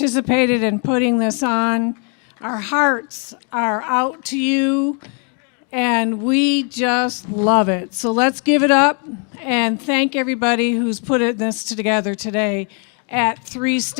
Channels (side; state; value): right; quieter; 39.0 dB